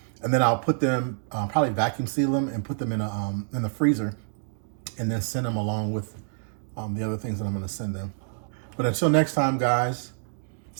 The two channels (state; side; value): silent; left; digital silence